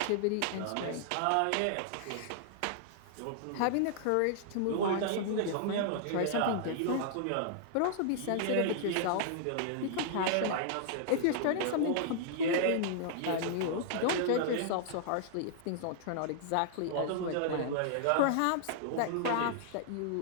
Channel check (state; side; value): different; both; correlation -0.01